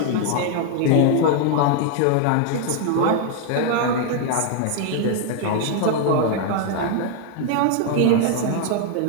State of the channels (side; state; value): both; different; correlation 0.00